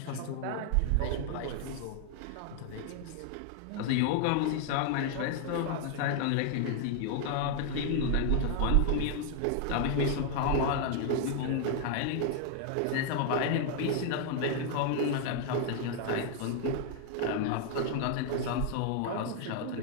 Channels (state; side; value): different; both; correlation 0.00